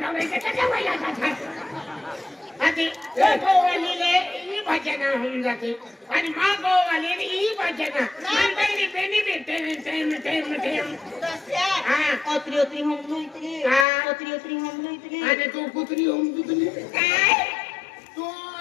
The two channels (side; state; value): right; drops out; at 13.9 s